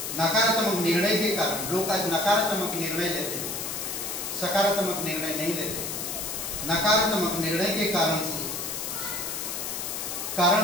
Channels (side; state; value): left; noise; hiss, 4 dB below the sound